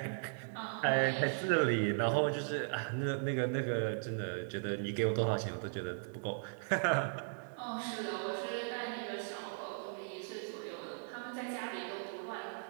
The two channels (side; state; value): left; silent; digital silence